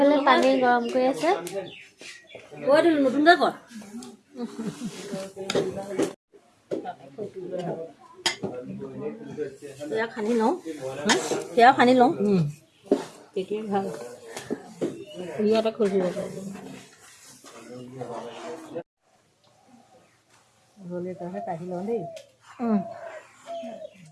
পানী গৰম কৰি আছে। নতুনকৈ কৰ সেয়া খানি লওঁ, সেয়া খানি লওঁ, তেতিয়া ভাল ইয়াতে খুজিব গ'লে তাহে কাঢ়ি লওঁ দেই।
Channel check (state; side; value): identical; both; correlation 1.00